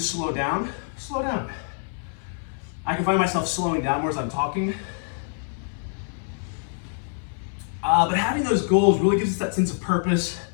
down, slow down. I can find myself slowing down more as I'm talking. But having those goals really gives us that sense of purpose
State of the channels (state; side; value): silent; right; 60 dB below the other